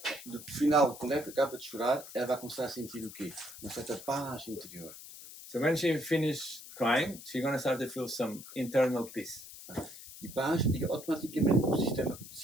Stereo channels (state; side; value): noise; left; hiss, 15 dB below the sound